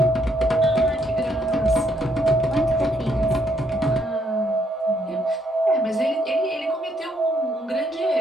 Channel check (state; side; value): normal; both; correlation 0.73